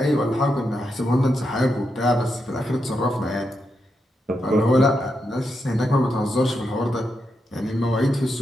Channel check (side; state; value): both; normal; correlation 0.84